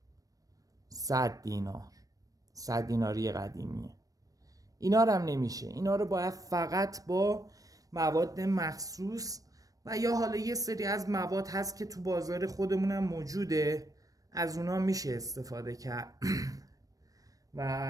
100 دینار، 100 دیناری قدیمیه. اینا رو هم نمیشه، اینا رو باید فقط با مواد مخصوص و یا حالا یه سری از مواد هست که تو بازار خودمون هم موجوده، از اونا میشه استفاده کرد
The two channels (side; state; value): left; late; 0.17 ms